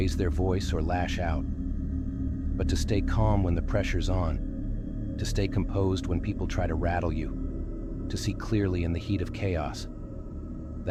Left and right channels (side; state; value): both; identical; correlation 1.00